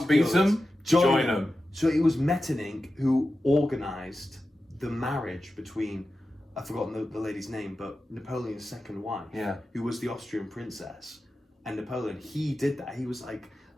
beat them, join them. So it was Metternich who organised the marriage between, I've forgotten the lady's name, but Napoleon's second wife, who was the Austrian princess, and Napoleon. He did that. He was like,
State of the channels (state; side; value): normal; both; correlation 0.93